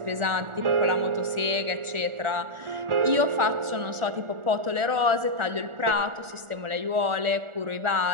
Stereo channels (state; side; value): late; left; 1.4 ms